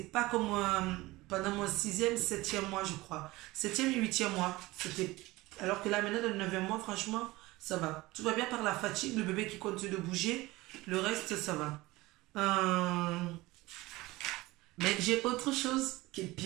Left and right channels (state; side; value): quieter; left; 20.0 dB